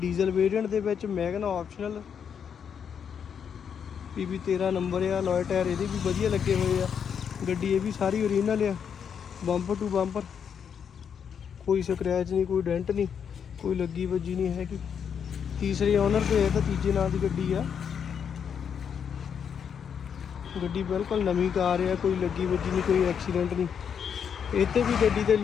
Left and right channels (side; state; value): right; quieter; 7.5 dB